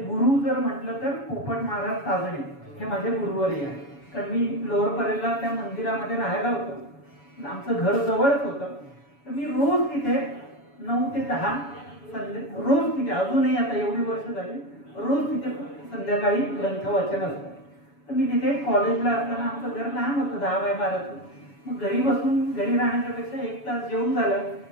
गुरु जर म्हटलं तर पोपट महाराज ताजणे हे माझे गुरुवरी आहे. तर मी लोअर परेलला त्या मंदिरामध्ये राहायला होतो, आमचं घर जवळच होतं. तर मी रोज तिथे 9 ते 10 रोज तिथे, अजूनही आता एवढी वर्ष झाली, रोज तिथे संध्याकाळी ग्रंथ वाचन असतं. तर मी तिथे कॉलेजला असताना, आमचं घर लहान होतं 10 बाय 12चं, मग घरी राहण्याच्या पेक्षा 1 तास जेवून झालं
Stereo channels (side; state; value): right; late; 7.1 ms